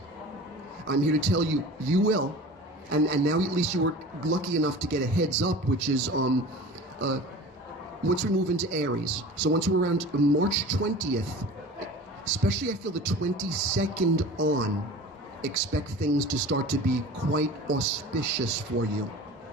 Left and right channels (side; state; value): both; normal; correlation 0.38